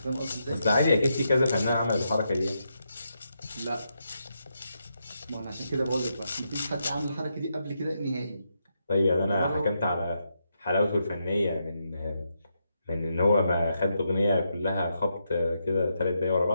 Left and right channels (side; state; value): both; inverted; correlation -0.83